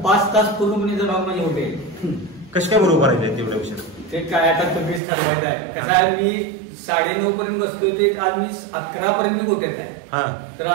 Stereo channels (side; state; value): left; drops out; at 5.0 s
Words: 5 तास पूर्णपणे जनावर माझे होते. कसे काय बरोबर राहिले तेवढ्या विषय? ते काय आता तुम्हीच ठरवायचं आहे. कसं आहे मी 9:30 पर्यंत बसतोय ते आज मी 11 पर्यंत गोठ्यात आहे. तर